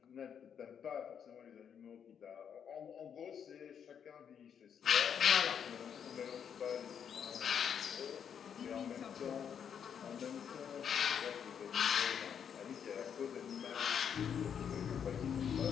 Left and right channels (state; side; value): quieter; right; 7.9 dB